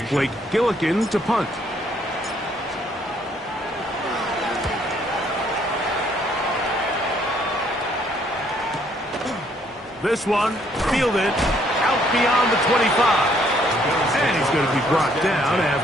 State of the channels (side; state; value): both; normal; correlation 0.66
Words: Blake Gillikin to punt. This one fielded out beyond the 25. And he's going to be brought down